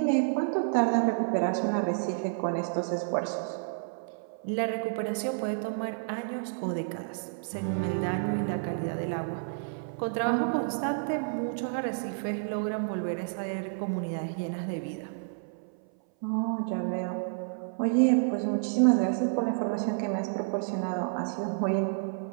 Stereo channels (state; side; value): silent; left; 58 dB below the other